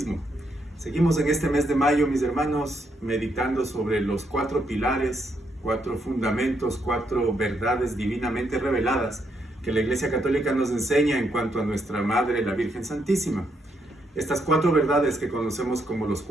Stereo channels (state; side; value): normal; both; correlation 0.77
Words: Seguimos en este mes de mayo, mis hermanos, meditando sobre los 4 pilares, 4 fundamentos, 4 verdades divinamente reveladas que la Iglesia Católica nos enseña en cuanto a nuestra Madre, la Virgen Santísima. Estas 4 verdades que conocemos como los